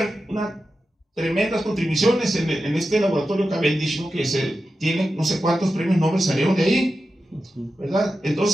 unas tremendas contribuciones en este laboratorio Cavendish, ¿no? Que tiene no sé cuántos premios Nobel salieron de ahí, ¿verdad?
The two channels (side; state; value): both; normal; correlation 0.91